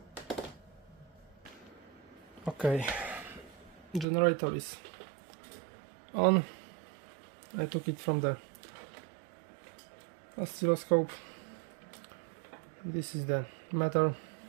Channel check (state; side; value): drops out; left; at 4.0 s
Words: Okay, generator is on. I took it from the oscilloscope. This is the meter.